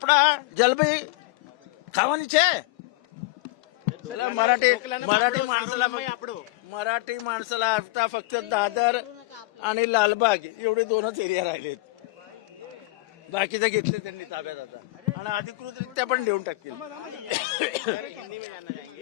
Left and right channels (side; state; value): right; quieter; 21.4 dB